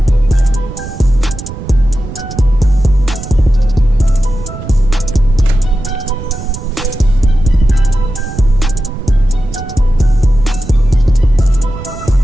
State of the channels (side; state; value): right; noise; rumble, 11 dB below the sound